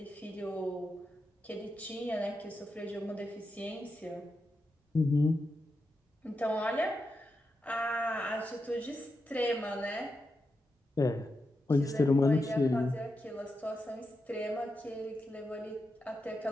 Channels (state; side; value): normal; both; correlation 0.87